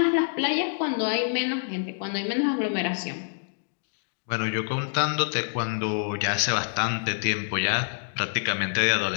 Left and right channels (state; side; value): silent; right; digital silence